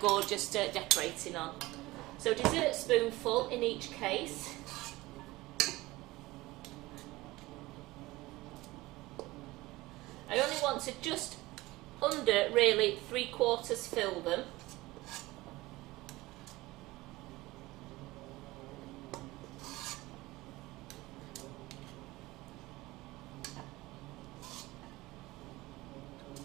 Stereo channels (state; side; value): quieter; left; 19.7 dB